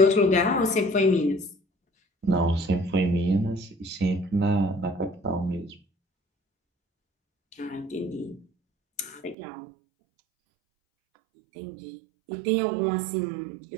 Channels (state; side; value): drops out; left; at 9.3 s